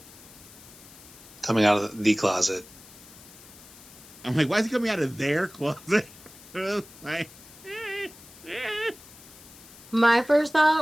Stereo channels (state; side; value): noise; left; hiss, 20 dB below the sound